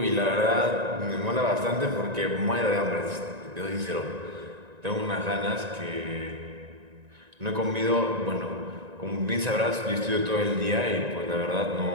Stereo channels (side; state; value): left; late; 1.9 ms